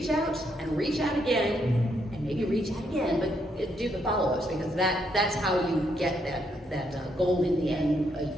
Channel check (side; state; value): both; normal; correlation 0.75